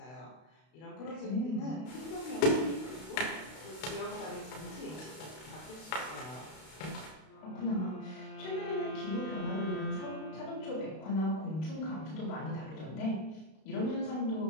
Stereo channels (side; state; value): right; late; 32 ms